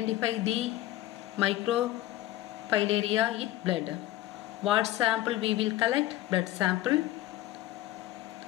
the microfilaria in blood. What sample we will collect? Blood sample.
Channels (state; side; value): quieter; right; 15.1 dB